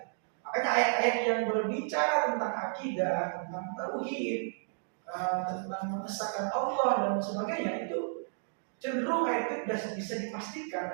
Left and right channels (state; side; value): silent; left; digital silence